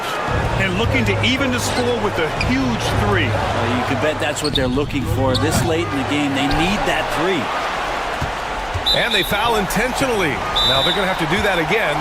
And looking to even the score with a huge three. You can bet that's what they're looking for. This late in the game, they need that three. And they foul intentionally. Now they're going to have to do that again.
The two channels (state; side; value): identical; both; correlation 1.00